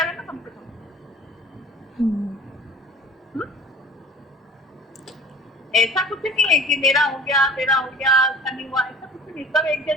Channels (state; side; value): normal; both; correlation 0.44